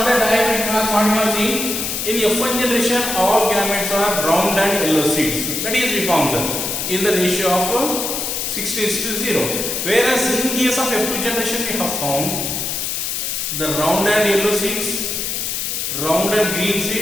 dihybrid class, what we have seen in F1 generation, all gametes are round and yellow seeds. That is we found in the ratio of 60:0. Whereas in case of F2 generation, we have found the round and yellow seeds, round and green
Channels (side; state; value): left; noise; hiss, 2 dB below the sound